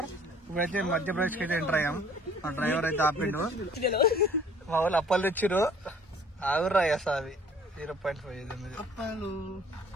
ఇప్పుడైతే మధ్యప్రదేశ్ కి అయితే ఎంటర్ అయ్యాం. మా డ్రైవర్ అయితే ఆపిండు. మా వాళ్ళు అప్పలు తెచ్చిరు. ఆగుర్రా అవి 0.5 అప్పాలు,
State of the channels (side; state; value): both; normal; correlation 0.55